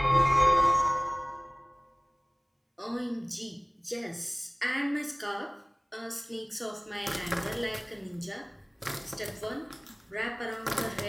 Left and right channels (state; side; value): identical; both; correlation 1.00